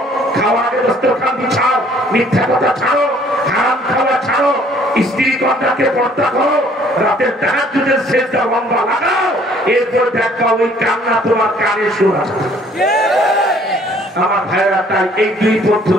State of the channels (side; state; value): both; normal; correlation 0.59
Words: খাওয়ার আগে দস্তরখান বিছাও, মিথ্যা কথা ছাড়ো, হারাম খাওয়া ছাড়ো, স্ত্রী কন্যাকে পর্দা করো, রাতের তাহাজ্জুদের সেজদা লম্বা লাগাও, এরপর দেখবা ওই কান্না তোমার কানে শোনা যাবে। আমার ভাইরা, তাই এই দুই